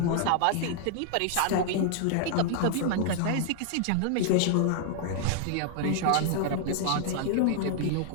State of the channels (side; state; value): both; different; correlation -0.01